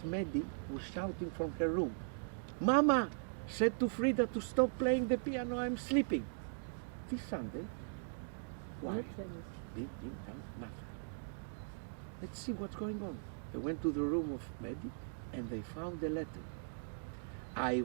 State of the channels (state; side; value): silent; left; digital silence